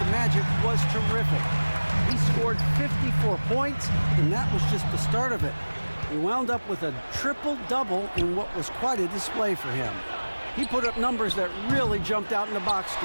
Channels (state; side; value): inverted; both; correlation -1.00